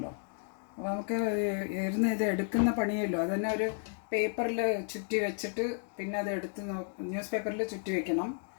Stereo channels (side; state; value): right; silent; 56 dB below the other